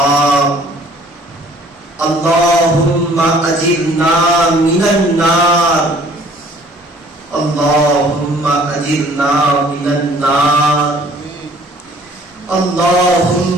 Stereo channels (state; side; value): normal; both; correlation 0.55